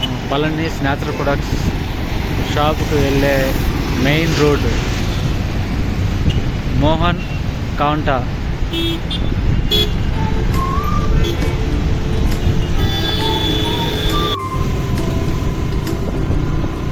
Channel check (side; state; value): both; identical; correlation 1.00